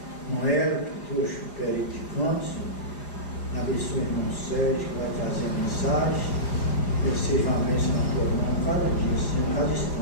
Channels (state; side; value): late; right; 4.9 ms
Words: Noel, que trouxe o perito de canto, Senhor. Abençoa o irmão Sérgio, que vai trazer a mensagem. Que seja uma bênção na tua mão cada dia, Senhor, cada